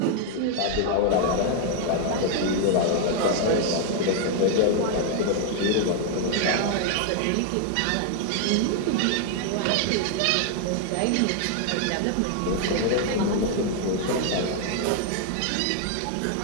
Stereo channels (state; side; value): different; both; correlation 0.00